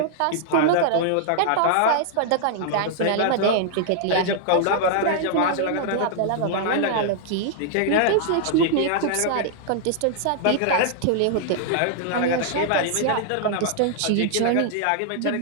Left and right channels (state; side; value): different; both; correlation 0.00